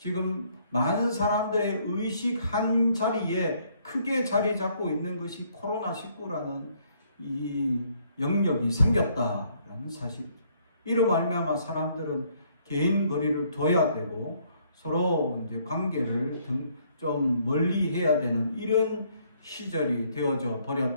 많은 사람들의 의식 한 자리에 크게 자리 잡고 있는 것이 코로나19라는 이 영역이 생겼다라는 사실이죠. 이로 말미암아 사람들은 개인 거리를 둬야 되고 서로 이제 관계를 좀 멀리 해야 되는 이런 시절이 되어져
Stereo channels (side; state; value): both; inverted; correlation -0.67